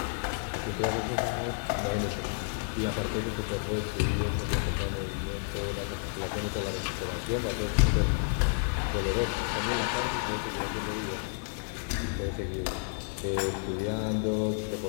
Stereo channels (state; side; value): silent; right; digital silence